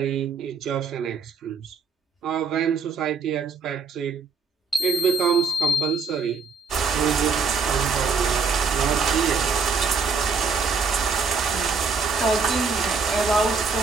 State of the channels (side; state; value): left; quieter; 4.9 dB